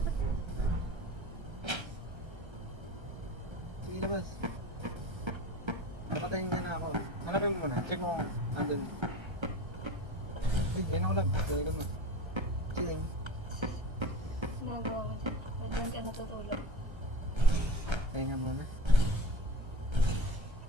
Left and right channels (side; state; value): left; late; 1.3 ms